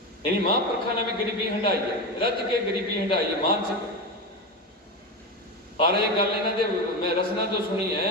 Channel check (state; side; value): normal; both; correlation 0.19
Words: यानी महापुरखा ने भी गरीबी हंडाई है, रज के गरीबी हंडाई है मानसिक। और ये गल इन्हां दे मैं रसना तो सुनी है